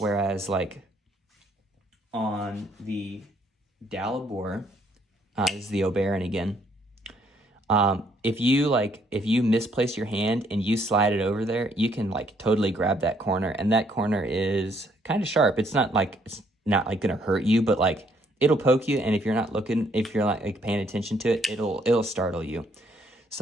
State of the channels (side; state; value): both; normal; correlation 0.68